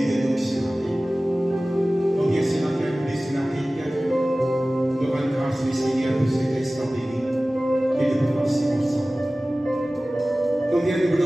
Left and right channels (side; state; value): both; normal; correlation 0.97